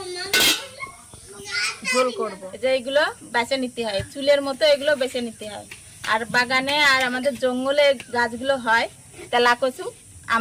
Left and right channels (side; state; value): both; identical; correlation 1.00